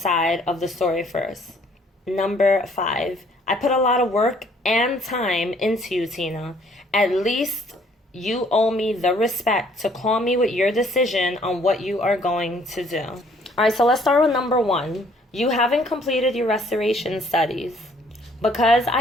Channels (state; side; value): normal; both; correlation 0.61